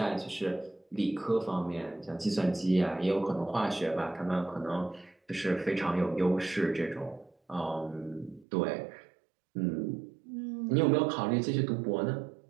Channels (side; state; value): left; drops out; at 8.5 s